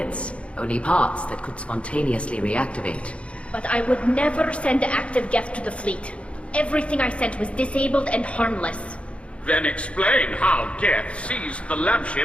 only parts that could spontaneously reactivate. But I would never send active guests to the fleet. Everything I sent was disabled and harmless. Then explain how Geth seized the lab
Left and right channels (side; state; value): right; late; 0.061 ms